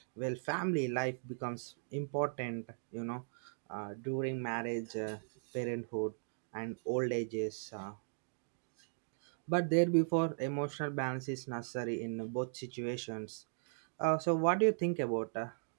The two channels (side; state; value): left; silent; digital silence